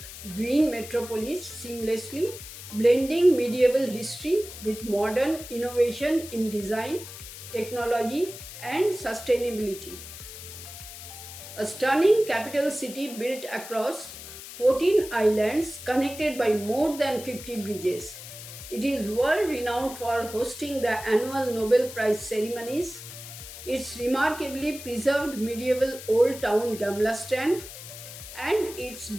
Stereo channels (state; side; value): noise; left; hiss, 13 dB below the sound